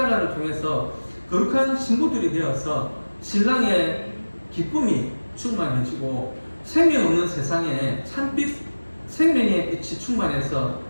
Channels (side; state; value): both; inverted; correlation -1.00